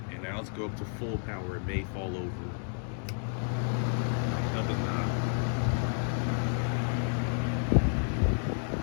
And now let's go up to full power. It may fall over. No, it does not.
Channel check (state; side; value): silent; right; 57 dB below the other